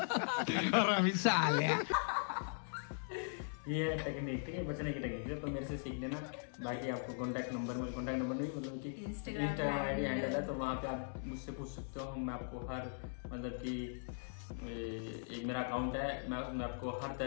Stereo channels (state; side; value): silent; right; digital silence